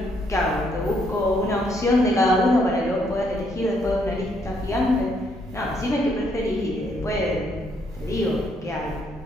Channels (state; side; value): normal; both; correlation 0.72